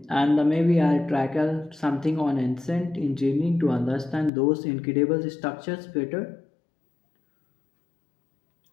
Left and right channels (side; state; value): right; drops out; at 4.3 s